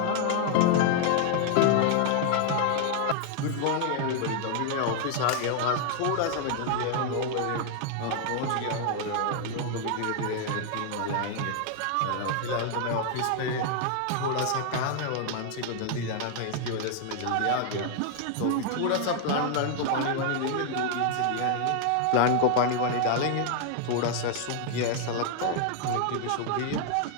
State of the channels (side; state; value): both; different; correlation 0.00